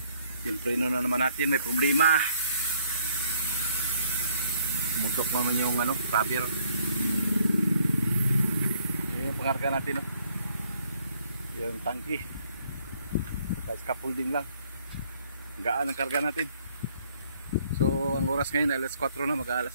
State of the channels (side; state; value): both; inverted; correlation -0.65